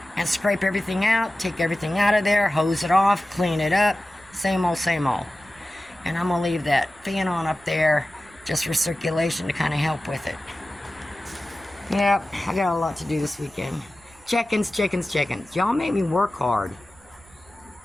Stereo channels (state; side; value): noise; right; rumble, 27 dB below the sound